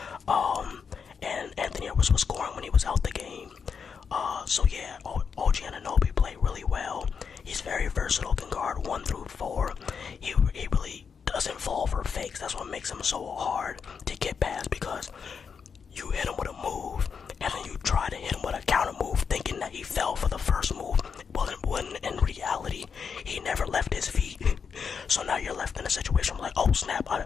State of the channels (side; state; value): right; quieter; 6.2 dB